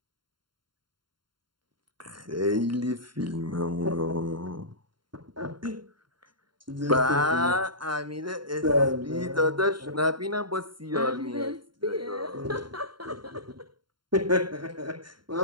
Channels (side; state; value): left; late; 0.72 ms